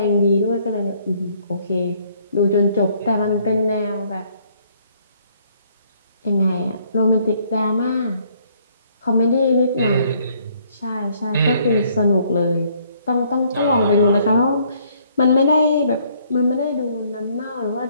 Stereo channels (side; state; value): both; inverted; correlation -0.65